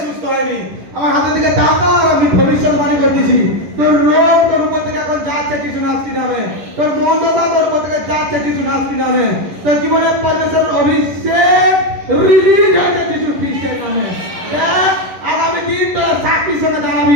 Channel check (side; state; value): left; late; 11 ms